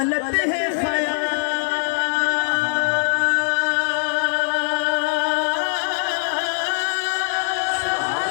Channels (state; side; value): silent; right; digital silence